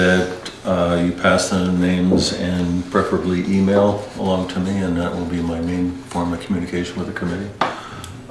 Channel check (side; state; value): both; identical; correlation 1.00